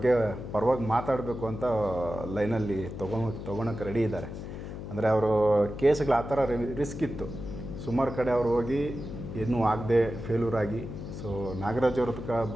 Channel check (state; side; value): noise; left; hum, 9 dB below the sound